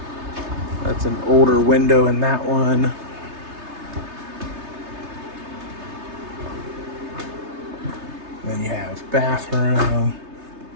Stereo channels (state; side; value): late; left; 3.3 ms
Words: That's an older window in that one. Then you have bathroom.